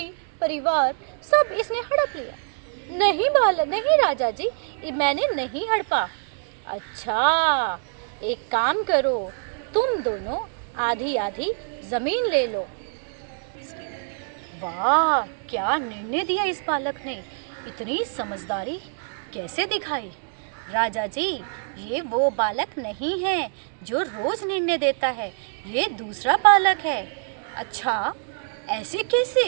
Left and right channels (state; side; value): silent; left; digital silence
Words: परिवार सब इसने हड़प लिया। नहीं राजा जी, मैंने नहीं हड़पा। अच्छा, एक काम करो, तुम दोनों आधी आधी जमीन ले लो। वाह, क्या निर्णय दिया इस बालक ने। इतनी समझदारी कैसे दिखाई। राजा जी, ये वो बालक नहीं है जो रोज निर्णय देता है, ये दूसरा बालक है। अच्छा, ऐसे